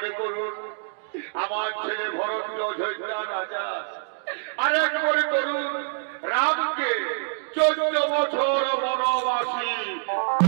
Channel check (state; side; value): silent; left; digital silence